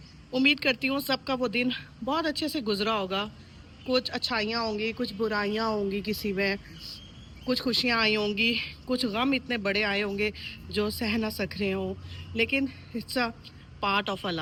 उम्मीद करती हूँ सबका वो दिन बहुत अच्छे से गुजरा होगा। कुछ अच्छाइयाँ होंगी, कुछ बुराइयाँ होंगी, किसी में कुछ खुशियाँ आई होंगी, कुछ गम इतने बड़े आए होंगे जो सह ना सक रहे हों, लेकिन it's a part of a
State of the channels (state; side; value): identical; both; correlation 1.00